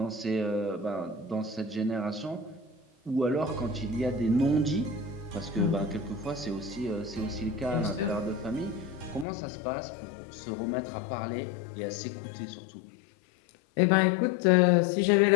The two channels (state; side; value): drops out; right; at 9.2 s